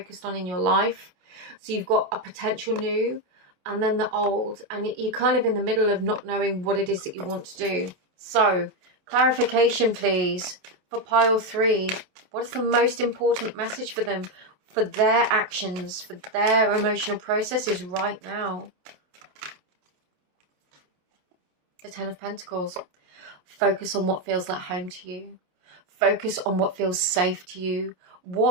on in your life. So you've got a potential new and then the old, and you're kind of in the middle of not knowing what it is that you want to do. So clarification, please, for pile 3. What is the most important message for them, for their actions, for their emotional processes right now? The Ten of Pentacles. Focus on what feels like home to you. Focus on what feels safe to you.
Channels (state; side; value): late; left; 28 ms